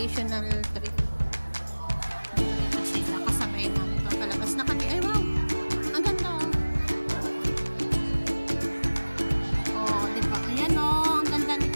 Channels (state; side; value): inverted; both; correlation -1.00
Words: trip. Kasi nakasabay namin ito palabas na kami. Ay, wow! Ang ganda, oh. Oh, diba? Ayan, oh. Ang ganda